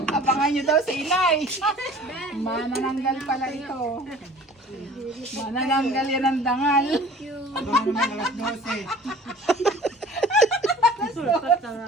Abangan nyo daw sa inay. Manananggal pala ito. Manananggal yan ang dangal. Ano naman alas 12.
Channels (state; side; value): normal; both; correlation 0.47